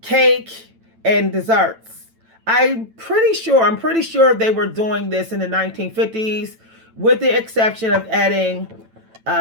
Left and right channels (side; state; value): left; late; 9.0 ms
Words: and desserts. I'm pretty sure they were doing this in the 1950s, with the exception of adding